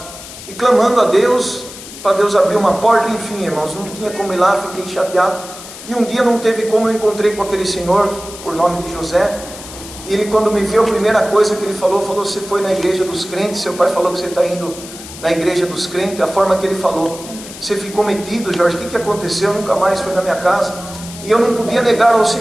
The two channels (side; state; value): left; noise; hiss, 14 dB below the sound